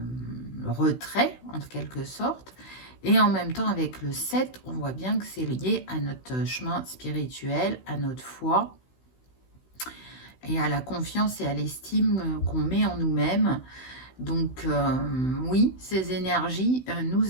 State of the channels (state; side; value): late; right; 16 ms